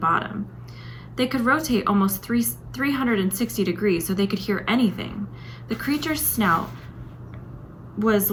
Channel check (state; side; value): identical; both; correlation 1.00